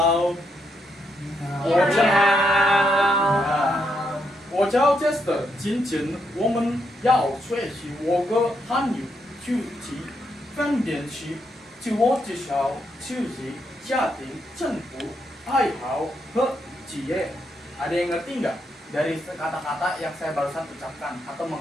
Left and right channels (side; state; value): both; normal; correlation 0.79